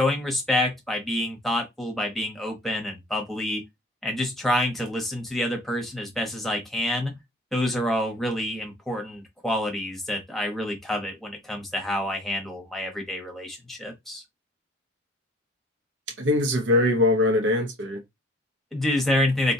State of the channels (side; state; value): both; normal; correlation 0.52